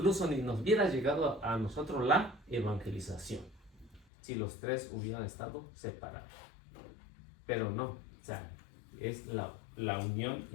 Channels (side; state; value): right; drops out; at 4.0 s